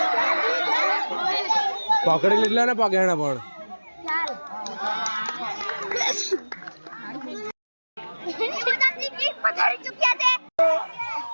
पकड़ी लीला ना पकड़ना पण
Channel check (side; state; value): both; inverted; correlation -1.00